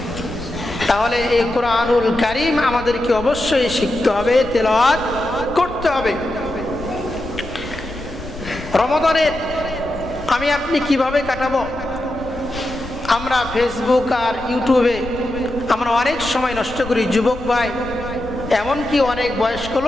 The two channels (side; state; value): left; noise; rumble, 13 dB below the sound